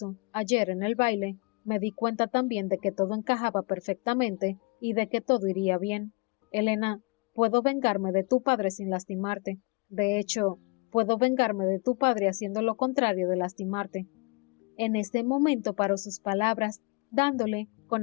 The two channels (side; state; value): right; quieter; 29.2 dB